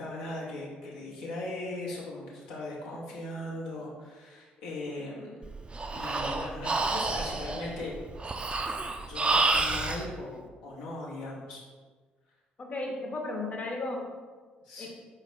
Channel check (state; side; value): normal; both; correlation 0.62